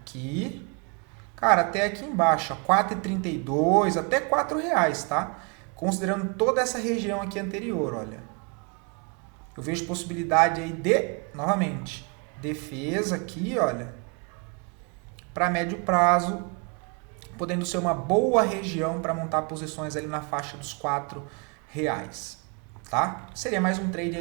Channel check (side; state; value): left; quieter; 33.9 dB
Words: cara, até aqui embaixo, 4,32, até R$4, tá? Considerando toda essa região aqui anterior, olha. Eu vejo possibilidade aí de, novamente, defesa aqui, olha, para médio prazo, podendo ser uma boa região para montar posições ali na faixa dos R$4, tá? Seria mais um trade